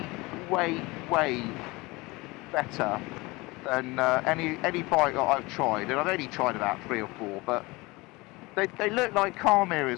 better than any bike that I've tried, and I've only tried about 3 or 4, but they look like car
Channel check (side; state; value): right; quieter; 23.2 dB